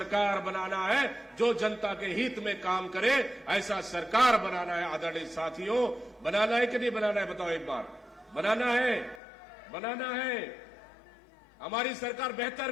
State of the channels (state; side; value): drops out; right; at 9.2 s